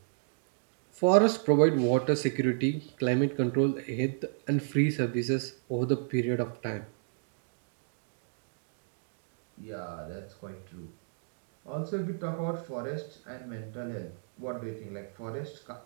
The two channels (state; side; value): silent; left; digital silence